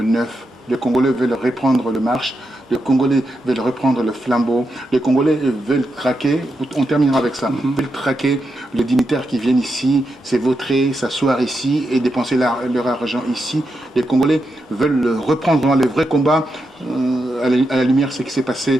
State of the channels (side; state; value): both; normal; correlation 0.85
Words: 9. Les Congolais veulent reprendre le marche, les Congolais veulent reprendre le flambeau, les Congolais veulent traquer, on terminera avec ça, veulent traquer les dignitaires qui viennent ici, s'évautrer, s'asseoir ici et dépenser leur argent ici. Les Congolais veulent reprendre le vrai combat à la lumière de ce qui s'est passé